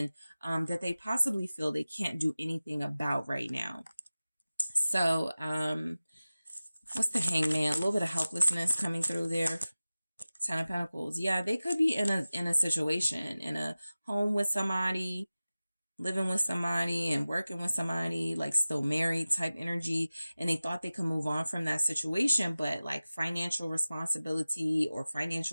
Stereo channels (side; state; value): both; inverted; correlation -0.97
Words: that they possibly feel they can't do anything about right now. So what's the Hangman? A little bit of helplessness coming through there. Ten of Pentacles. Yeah, they could be in a situation, in a home with somebody, living with somebody and working with somebody, like still married type energy. And they thought they could move on from that situation, but like financial responsibility or